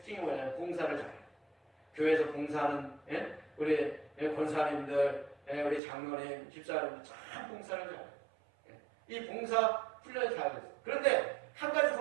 뭐냐면 봉사를 잘해요. 교회에서 봉사하는 우리 권사님들, 우리 장로님, 집사님 참 봉사를 잘해요. 이 봉사 훈련이 잘했어요. 그런데 한 가지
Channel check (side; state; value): left; drops out; at 5.8 s